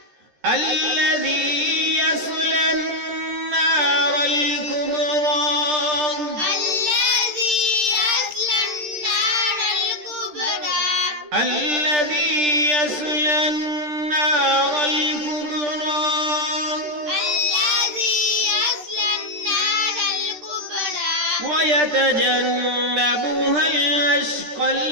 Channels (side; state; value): left; late; 13 ms